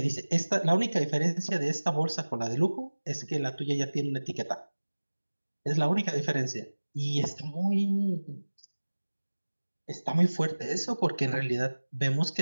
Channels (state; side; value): inverted; both; correlation -1.00